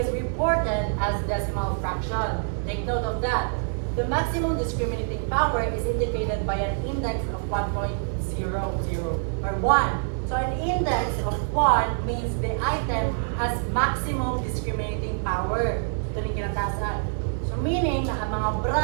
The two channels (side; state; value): left; silent; digital silence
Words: reported as decimal fraction. Take note of that. The maximum discriminating power is indicated by an index of 1.00 or 1. So an index of 1 means the item has maximum discriminating power. Ito yung kinatasan. So meaning na ang mga